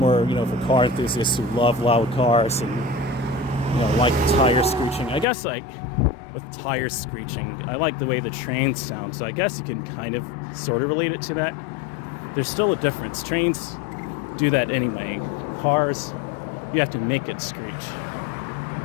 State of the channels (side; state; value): right; drops out; at 5.2 s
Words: for car enthusiasts who love loud cars and, like tire screeching. I guess, like, with tire screeching, I like the way the trains sound, so I guess you can kind of, sort of relate it to that. There's still a difference. Trains do that anyway. Cars, you have to make it screech.